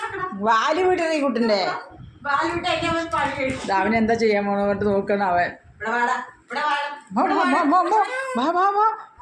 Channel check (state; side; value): identical; both; correlation 1.00